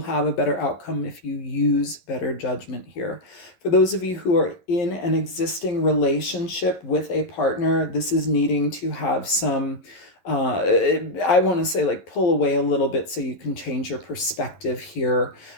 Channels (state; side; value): late; right; 11 ms